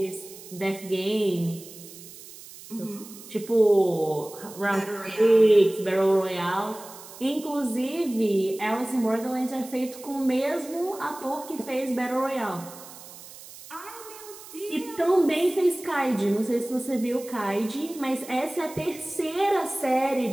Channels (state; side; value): noise; right; hiss, 17 dB below the sound